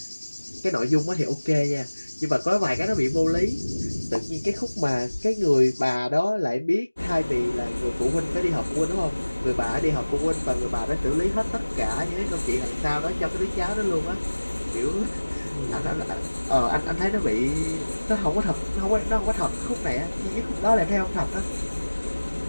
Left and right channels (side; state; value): both; inverted; correlation -1.00